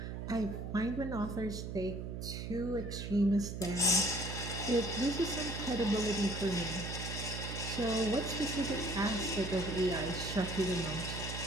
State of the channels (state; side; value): noise; right; hum, 6 dB below the sound